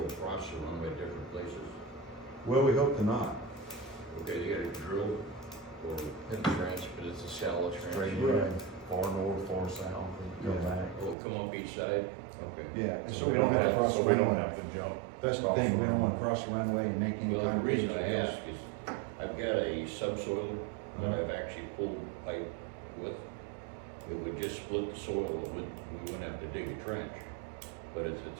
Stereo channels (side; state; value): left; drops out; at 11.2 s